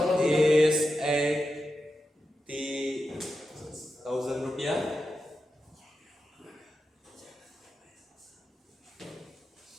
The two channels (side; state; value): both; normal; correlation 0.89